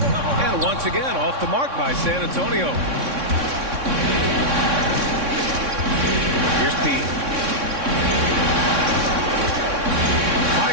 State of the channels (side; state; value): left; late; 3.6 ms